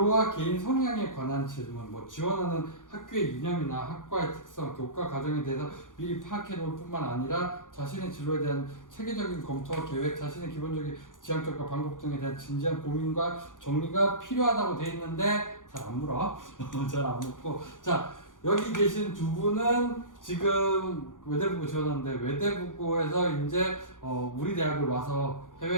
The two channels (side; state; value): right; late; 0.88 ms